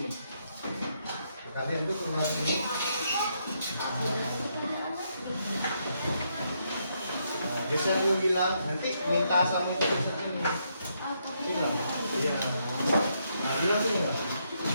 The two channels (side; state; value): both; inverted; correlation -0.77